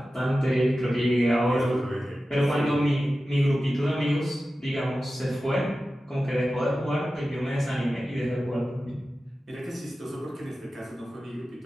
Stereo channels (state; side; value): normal; both; correlation 0.94